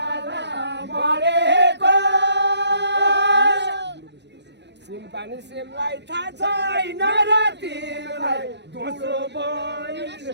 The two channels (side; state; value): left; late; 0.50 ms